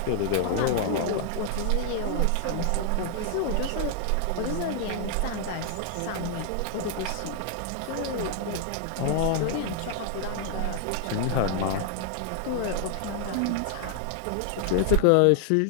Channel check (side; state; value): both; different; correlation 0.00